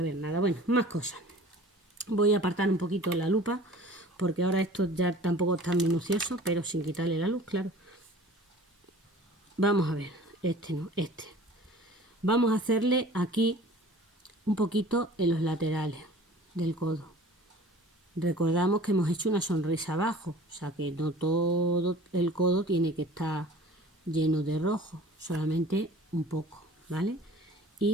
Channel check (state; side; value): normal; both; correlation 0.46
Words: ver nada. Bueno, más cosas. Voy a apartar un poquito la lupa porque ahora esto ya tampoco es tan minucioso, pero sin quitarle la luz, claro. Vamos a ver, este no, este. Vamos a hacerle aquí un poquito en los laterales del codo. Recordamos que hemos hecho una sonrisa abajo, o sea que no todo el codo tiene que estar lleno de rojo, solamente un poco, ¿vale?